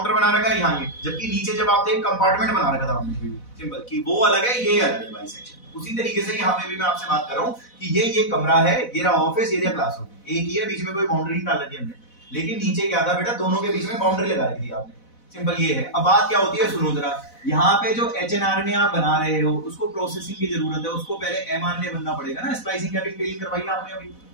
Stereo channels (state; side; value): late; right; 4.0 ms